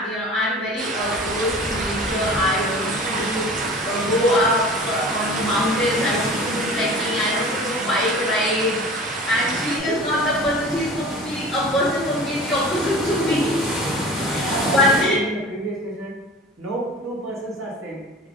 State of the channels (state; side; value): normal; both; correlation 0.39